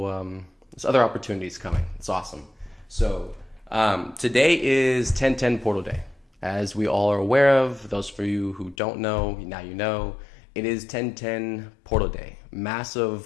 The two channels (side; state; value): right; drops out; at 8.8 s